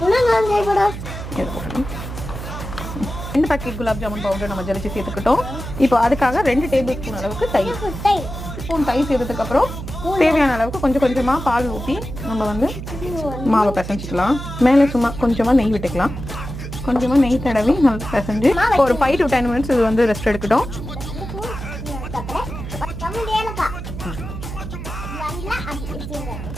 packet gulab jamun powder நம்ம ஜலிச்சு சேர்த்துக்கிட்டோம். இப்போ அதுக்காக 2 டேபிள் ஸ்பூன் அளவுக்கு தயிர் சேர்த்ததுக்கு அப்புறம் தேவையான அளவுக்கு கொஞ்சம் கொஞ்சமா பால் ஊற்றி நம்ம வந்து மாவை பிசைஞ்சிக்கலாம். மேலே சும்மா கொஞ்சமா நெய் விட்டுக்கலாம். கொஞ்சமா நெய் தடவி நல்லா பிசைஞ்சு ஒரு 5 to 10 மினிட்ஸ் இது வந்து ரெஸ்ட் எடுக்கட்டும்.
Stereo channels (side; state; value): right; noise; hum, 8 dB below the sound